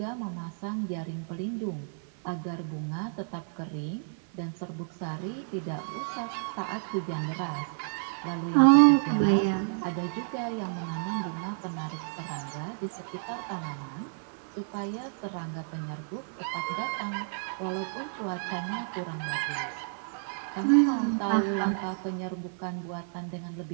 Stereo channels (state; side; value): silent; left; 56 dB below the other